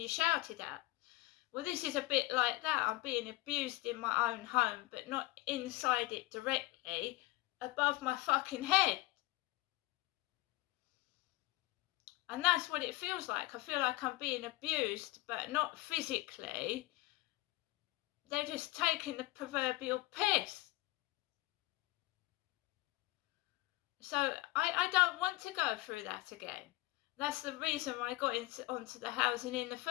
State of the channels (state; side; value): quieter; right; 20.0 dB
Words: you're shouted at. Well, this is a bit like that. I'm being abused in my own home, but not inside it directly, above my fucking head. And that's what it feels like. I feel like I'm being abused, but not physically. They're just taking the proverbial piss. So I don't want to go through that again. That's the reason why I got onto the housing in the